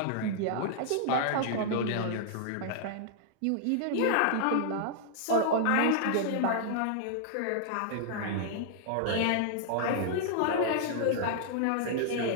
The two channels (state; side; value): different; both; correlation -0.01